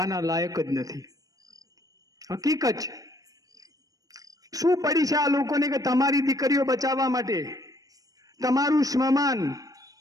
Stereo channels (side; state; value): left; late; 0.17 ms